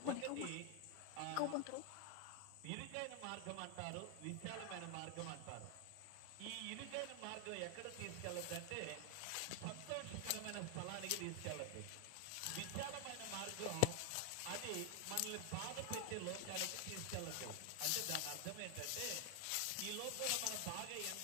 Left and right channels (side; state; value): both; different; correlation 0.00